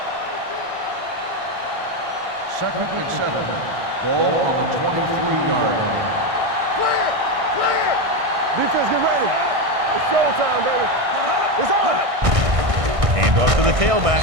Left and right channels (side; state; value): left; late; 1.6 ms